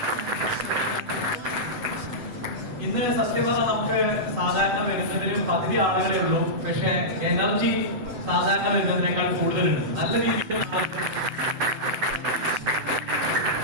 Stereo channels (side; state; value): left; late; 8.1 ms